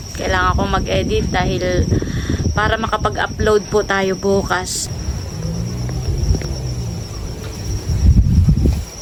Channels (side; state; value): both; identical; correlation 1.00